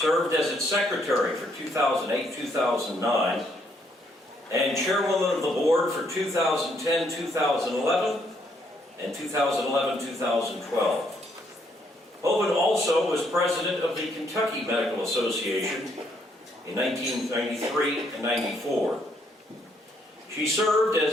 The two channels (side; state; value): both; normal; correlation 0.71